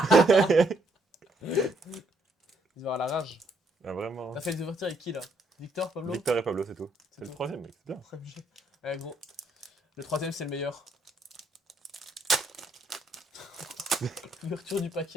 Ils vont avoir la rage. Ah, vraiment. T'as fait les ouvertures avec qui, là? Victor, Pablo? Victor et Pablo, c'est tout. C'est le tout. troisième, mec, c'est bien. Ouais, gros. Le troisième, c'est le meilleur. L'ouverture du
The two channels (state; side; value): normal; both; correlation 0.72